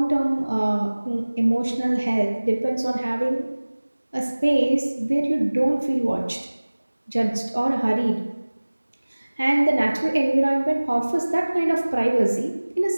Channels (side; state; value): both; inverted; correlation -1.00